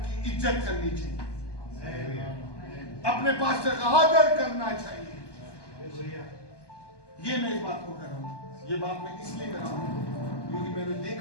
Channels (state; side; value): late; right; 1.2 ms